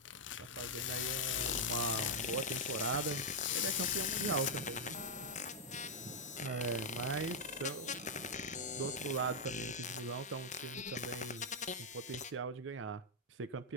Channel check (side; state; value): both; normal; correlation -0.01